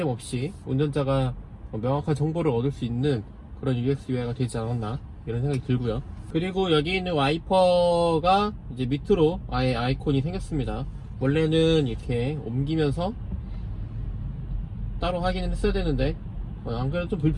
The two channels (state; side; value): identical; both; correlation 1.00